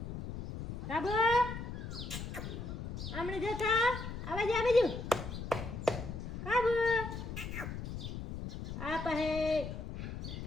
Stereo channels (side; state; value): left; noise; rumble, 7 dB below the sound